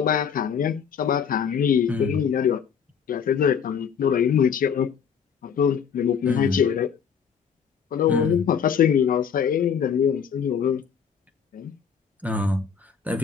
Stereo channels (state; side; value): quieter; right; 7.2 dB